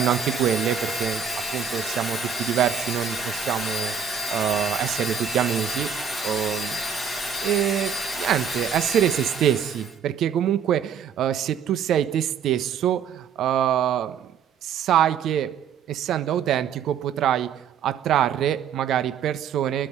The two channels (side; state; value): left; quieter; 7.2 dB